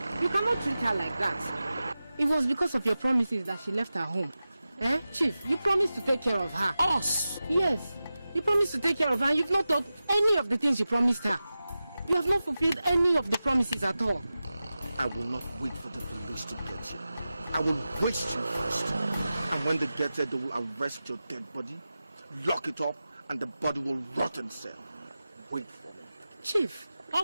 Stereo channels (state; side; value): inverted; both; correlation -0.94